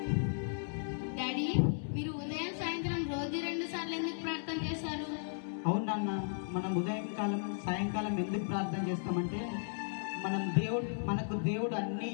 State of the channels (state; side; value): silent; right; 54 dB below the other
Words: డాడీ, మీరు ఉదయం సాయంత్రం రోజు 2 సార్లు ఎందుకు ప్రార్థన చేశారు? అవును నాన్న, మనం ఉదయం కాలం సాయంకాలం ఎందుకు ప్రార్థన చేస్తామంటే మనకు దేవుడు అన్నీ